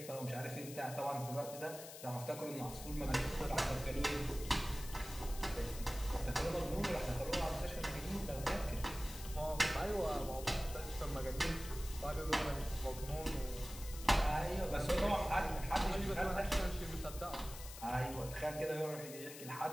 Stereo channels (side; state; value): left; noise; hiss, 12 dB below the sound